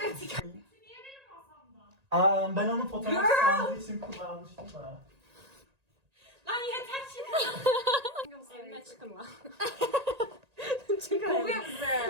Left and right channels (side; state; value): left; late; 1.9 ms